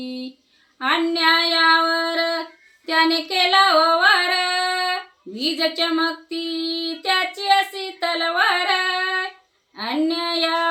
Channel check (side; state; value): both; identical; correlation 1.00